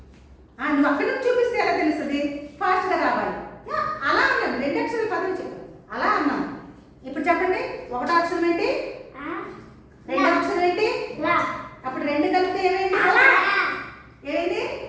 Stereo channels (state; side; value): identical; both; correlation 1.00